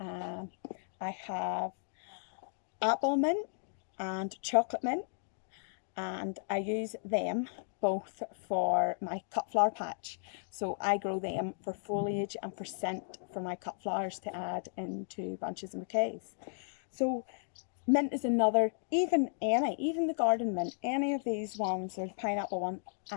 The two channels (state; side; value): silent; right; digital silence